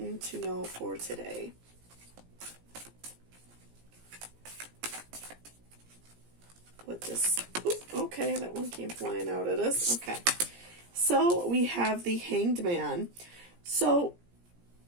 to know for today? Okay, that one came flying out at us. Okay, so we have the Hanged Man. So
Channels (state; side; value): late; left; 17 ms